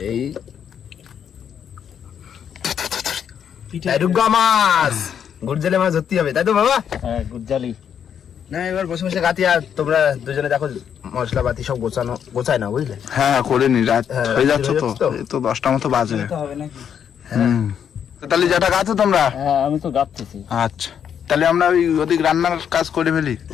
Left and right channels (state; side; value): quieter; right; 8.3 dB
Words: এই মাছ গুড়জালি মাছ ধরতে হবে, তাই তো বাবা? হ্যাঁ গুড়জালি না এবার বসে বসে গাঁথি, আর তোমরা দুজনে দেখো মশলা পাতি সব গোছায় না, বুঝলে? হ্যাঁ করে নি, রাত হয়ে যাচ্ছে তো, এই তো 10টা মতো বাজে। হবে নাকি? তাহলে যেটা গাছো তোমরা? হ্যাঁ আমি তো গাঁথতেছি। আচ্ছা তাহলে আমরা ওই ওদিক রান্নার কাজ করে ফেলি।